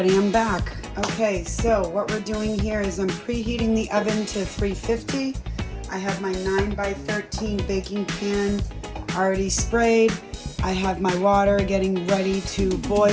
I'm back. Okay, so what we're doing here is I'm preheating the oven to 350. I have my 9x13 baking pan already sprayed. I have my water getting ready to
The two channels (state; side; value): identical; both; correlation 1.00